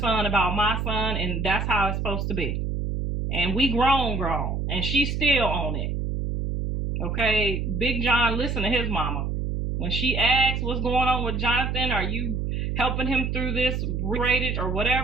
about my son, and that's how it's supposed to be. And we grown, and she's still on it. Okay, Big John, listen to his mama. When she asks what's going on with Jonathan, are you helping him through this rated or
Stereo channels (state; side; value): noise; right; hum, 1 dB below the sound